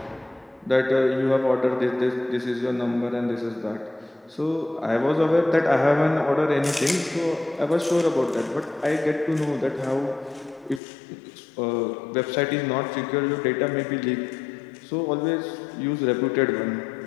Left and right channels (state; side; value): drops out; right; at 10.8 s